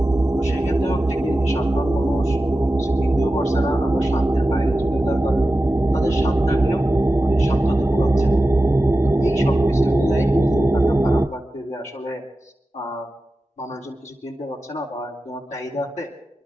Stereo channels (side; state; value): both; normal; correlation 0.93